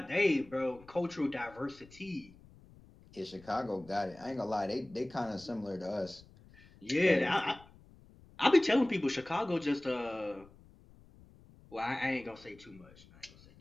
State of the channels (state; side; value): noise; left; rumble, 24 dB below the sound